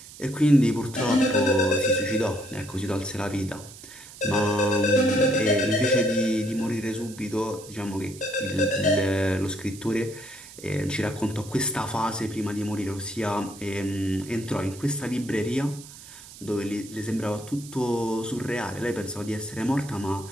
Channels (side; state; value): right; noise; hiss, 17 dB below the sound